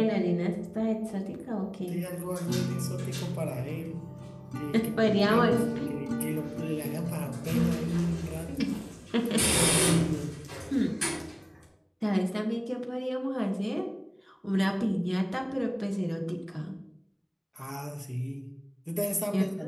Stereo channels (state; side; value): identical; both; correlation 1.00